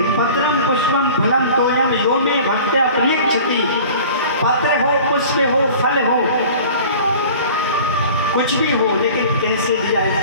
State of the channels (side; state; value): both; inverted; correlation -0.43